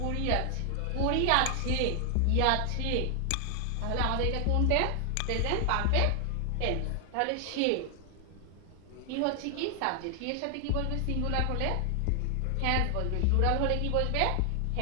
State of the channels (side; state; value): both; different; correlation 0.00